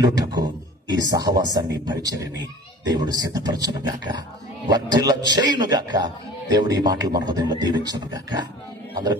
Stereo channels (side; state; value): both; normal; correlation 0.42